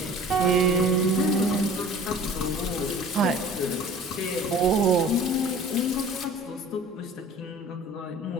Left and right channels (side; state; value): both; normal; correlation 0.45